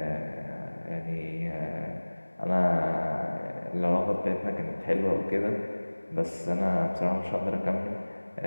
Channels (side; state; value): both; inverted; correlation -1.00